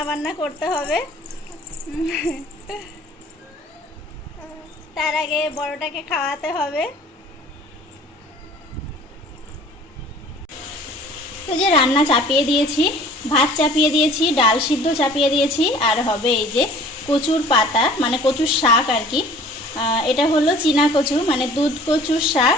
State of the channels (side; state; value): both; normal; correlation 0.49